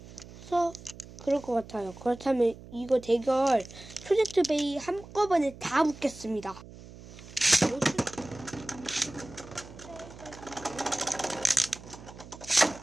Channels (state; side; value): noise; right; hum, 17 dB below the sound